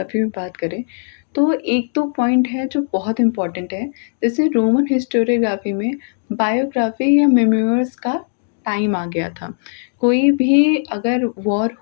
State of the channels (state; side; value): silent; right; digital silence